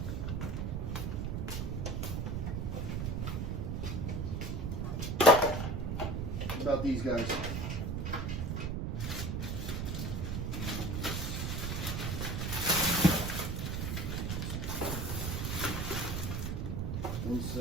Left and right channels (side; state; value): right; noise; rumble, 1 dB below the sound